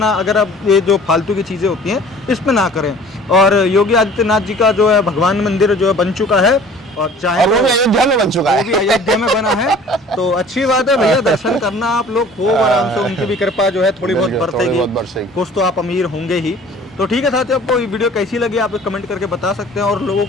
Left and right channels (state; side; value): normal; both; correlation 0.49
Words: अगर आप ये जो फालतू की चीज़ें होती हैं इस पे ना करें। और योगी आदित्यनाथ जी का जो है भगवान मंदिर जो है बन चुका है, और चाहे वो भी अयोध्या में बन चुका है, वो भी अयोध्या में बना है, तो अच्छी बात है भैया, दर्शन करना आप लोग खूब आराम से, उनकी भी कृपा जो है थोड़ी बहुत बरसेगी, कुछ तो आप अमीर होंगे ही। तो ठीक है साथियों, आपको ये वीडियो कैसी लगी आप कमेंट करके बता सकते हैं, और लोगों